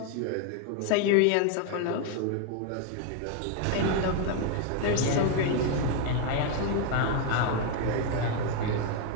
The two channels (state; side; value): different; both; correlation 0.01